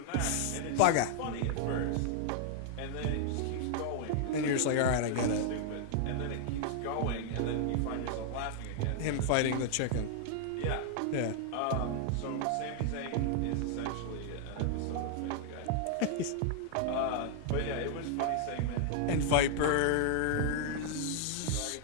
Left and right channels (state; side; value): different; both; correlation 0.00